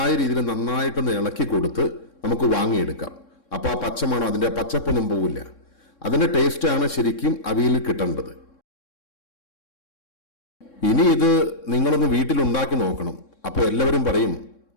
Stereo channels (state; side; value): late; right; 3.6 ms